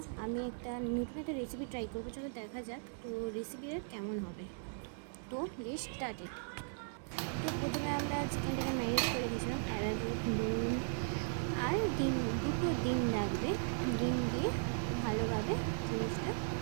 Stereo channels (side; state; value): left; silent; 53 dB below the other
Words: আমি নতুন একটা রেসিপি ট্রাই করবো। চলো দেখা যাক তো রেসিপিটা কেমন হবে। তো লেটস স্টার্টেড। তো প্রথমে আমরা চিকেনটাকে ম্যারিনেট করে রেখেছিলাম অ্যারারুট, নুন আর দুটো ডিম লাগবে। ডিম দিয়ে ভালোভাবে জিনিসটা